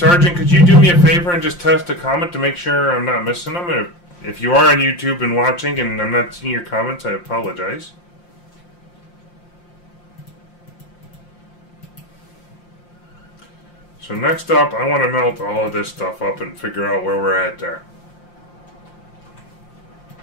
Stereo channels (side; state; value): right; late; 5.7 ms